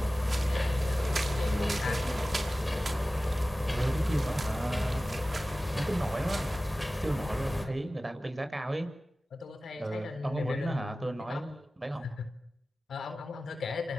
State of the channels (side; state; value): both; normal; correlation 0.96